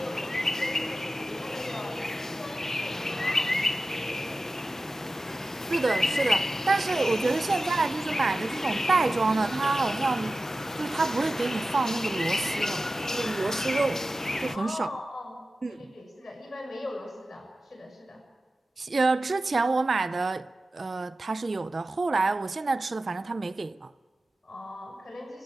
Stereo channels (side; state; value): both; normal; correlation 0.95